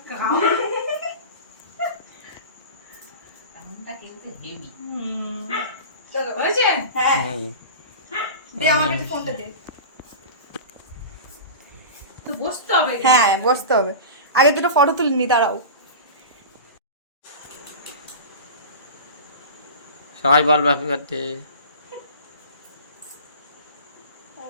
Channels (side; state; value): both; inverted; correlation -0.32